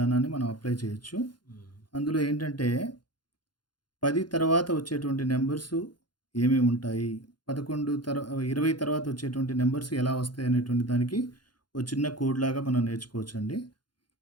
మనం అప్లై చేయొచ్చు. హ్మ్. అందులో ఏంటంటే 10 తర్వాత వచ్చేటువంటి నంబర్స్ ఏమేమి ఉంటాయి? 11 20 తర్వాత వచ్చేటువంటి నంబర్స్ ఎలా వస్తాయి అనేటువంటి దానికి ఒక చిన్న కోడ్ లాగా మనం నేర్చుకోవచ్చండి.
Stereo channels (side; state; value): right; late; 0.71 ms